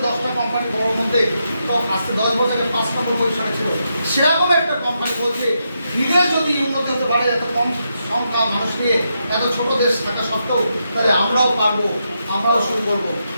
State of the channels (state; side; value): inverted; both; correlation -0.83